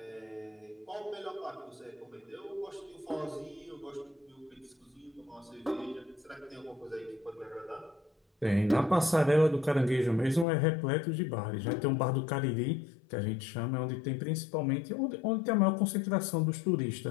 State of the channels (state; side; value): drops out; right; at 10.5 s